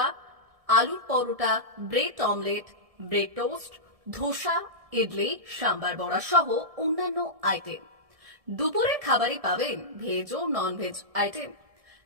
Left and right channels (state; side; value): late; left; 1.7 ms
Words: আলুর paratha, bread omelette, bread toast, dosa, idli, sambar vada সহ অন্যান্য আইটেম। দুপুরের খাবারে পাবেন ভেজ ও নন ভেজ আইটেম,